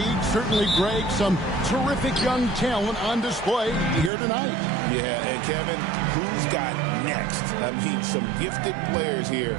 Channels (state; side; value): drops out; left; at 4.1 s